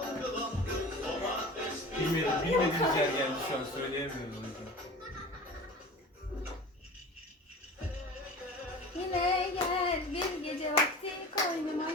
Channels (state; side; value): normal; both; correlation 0.37